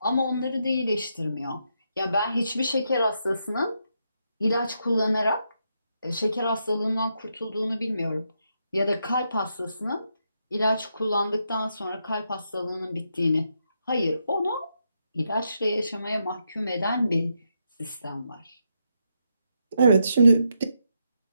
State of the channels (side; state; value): both; inverted; correlation -0.81